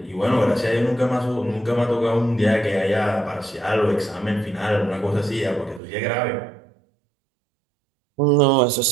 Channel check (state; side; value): drops out; left; at 5.8 s